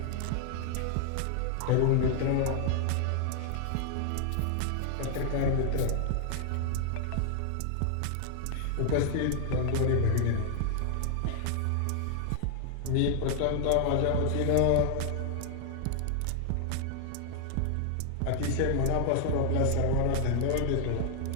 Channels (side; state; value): both; different; correlation 0.00